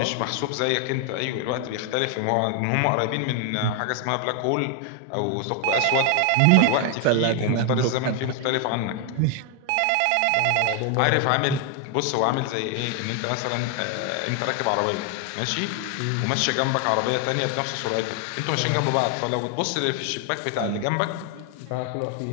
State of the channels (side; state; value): both; different; correlation 0.00